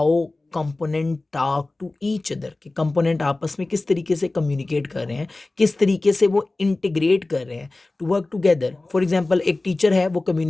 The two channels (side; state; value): right; quieter; 3.0 dB